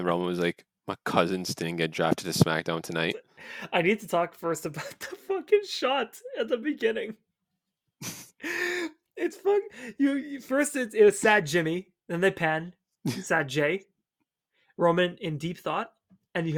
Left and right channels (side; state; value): both; identical; correlation 1.00